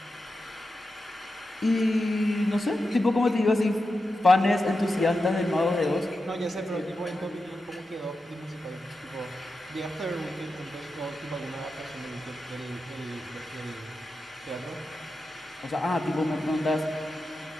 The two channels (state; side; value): normal; both; correlation 0.90